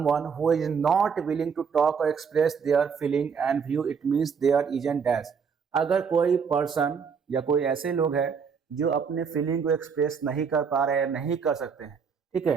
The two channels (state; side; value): quieter; left; 6.2 dB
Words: who is not willing to talk or express their feeling and view, it means there isn't dash। अगर कोई person या कोई ऐसे लोग हैं जो अपने फीलिंग को एक्सप्रेस नहीं कर पा रहे हैं, नहीं कर सकते हैं, ठीक